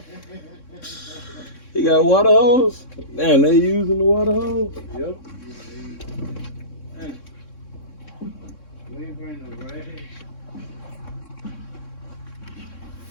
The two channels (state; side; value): late; right; 3.6 ms